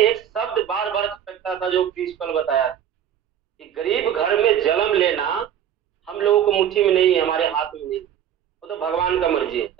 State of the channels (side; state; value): left; quieter; 9.9 dB